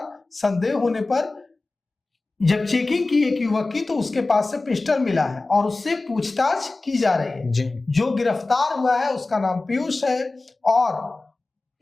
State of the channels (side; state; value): right; quieter; 3.3 dB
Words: संदेह होने पर जब चेकिंग की एक युवक की तो उसके पास से पिस्टल मिला है और उससे पूछताछ की जा रही है। जो गिरफ्तार हुआ है उसका नाम पीयूष है और